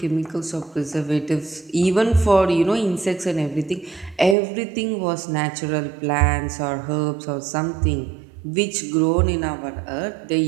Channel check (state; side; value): drops out; left; at 4.4 s